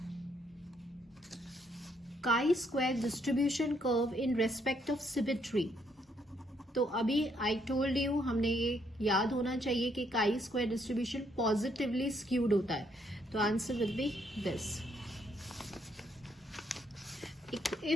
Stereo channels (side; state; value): both; normal; correlation 0.71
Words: काई square distribution curve in respect of symmetry. तो अभी आई टोल्ड यू, हमने ये याद होना चाहिए कि काई स्क्वायर डिस्ट्रीब्यूशन पॉजिटिवली स्क्यूड होता है। तो answer will be this.